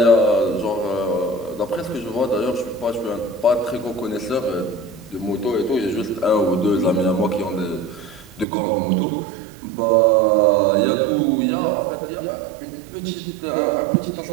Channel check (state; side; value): drops out; left; at 8.5 s